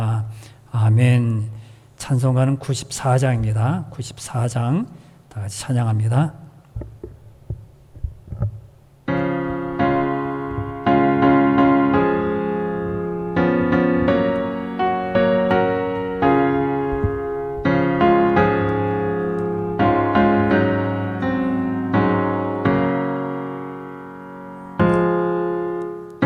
아멘. 찬송가는 94장입니다. 94장 다 같이 찬양합니다.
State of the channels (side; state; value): both; identical; correlation 1.00